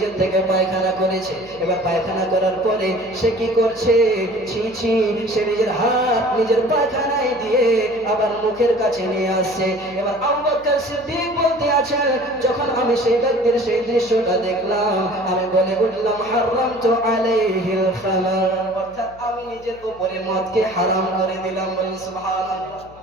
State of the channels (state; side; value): noise; left; hum, 24 dB below the sound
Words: থেকে পায়খানা করেছে। এবার পায়খানা করার পরে সে কি করছে, ছি ছি, সে নিজের হাত নিজের পায়খানায় দিয়ে আবার মুখের কাছে নিয়ে আসছে। এবার আবু বকর সিদ্দিক বলতে আছেন, যখন আমি সেই ব্যক্তির সেই দৃশ্যটা দেখলাম, আমি বলে উঠলাম, হারামতু আলাইহিল খামার, অর্থাৎ আমি নিজের উপরে মদকে হারাম করে দিলাম। বলেন সুবহানাল্লাহ।